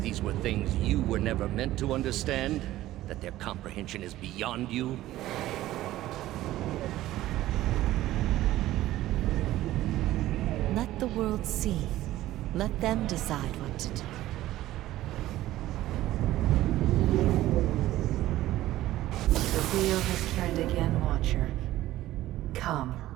these were things you were never meant to understand? That their comprehension is beyond you? Let the world see. Let them decide what to do. The wheel has turned again, Watcher. Come.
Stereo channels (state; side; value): quieter; left; 15.2 dB